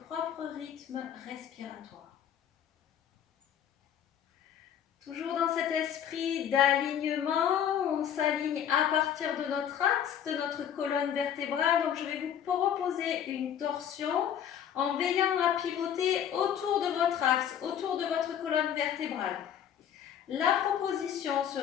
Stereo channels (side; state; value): right; quieter; 9.4 dB